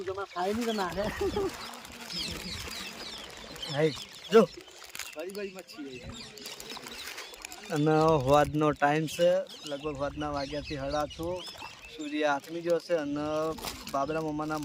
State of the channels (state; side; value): identical; both; correlation 1.00